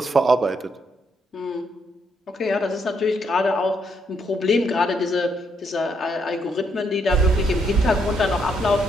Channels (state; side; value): normal; both; correlation 0.75